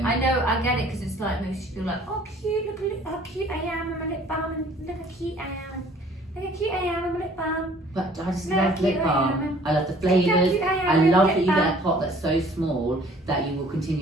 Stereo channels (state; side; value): normal; both; correlation 0.55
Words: know, I get it, because it's like, makes you feel like, oh cute, look how cute I am with my lip balm, and look how cute I am. Look how cute I am, I'm a lip balm. But I just No, love cute lip I balm. am. I love the Look how flavours. cute I am, I I'm a love lip that you get balm. a pot that's so small that you will